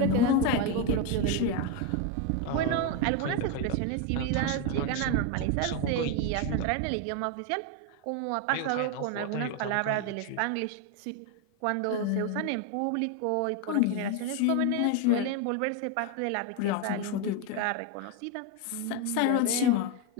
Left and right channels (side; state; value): both; different; correlation 0.02